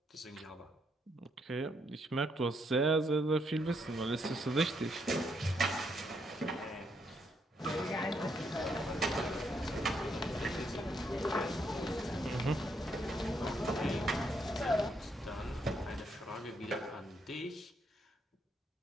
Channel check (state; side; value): normal; both; correlation 0.75